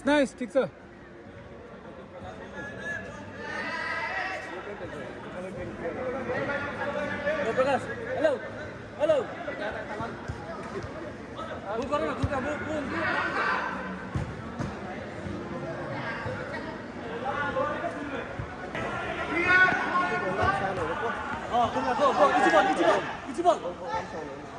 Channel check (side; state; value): both; identical; correlation 1.00